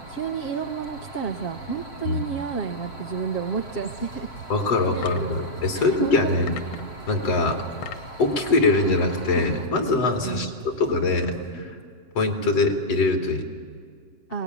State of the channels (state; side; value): late; right; 7.8 ms